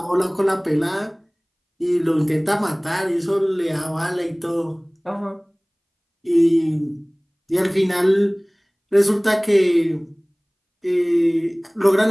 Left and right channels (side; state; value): both; identical; correlation 1.00